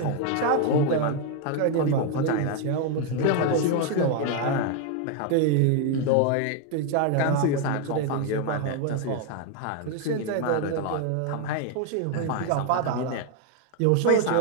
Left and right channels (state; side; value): different; both; correlation 0.01